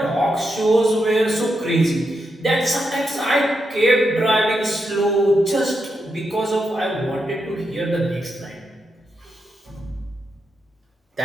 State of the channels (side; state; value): both; normal; correlation 0.84